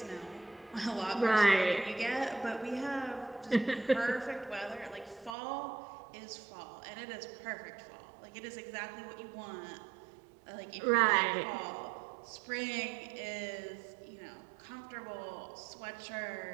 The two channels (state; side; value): drops out; left; at 5.4 s